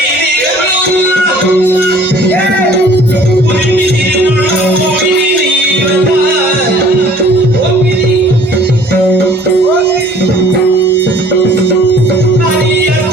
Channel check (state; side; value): normal; both; correlation 0.53